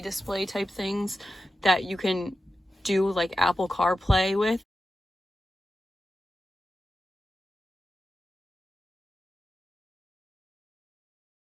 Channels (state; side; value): normal; both; correlation 0.91